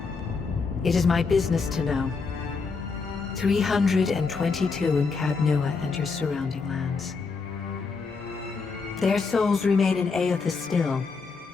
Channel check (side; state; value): right; quieter; 4.7 dB